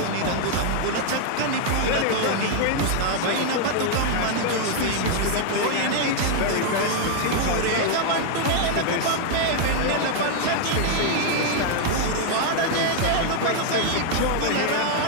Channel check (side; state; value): both; different; correlation 0.00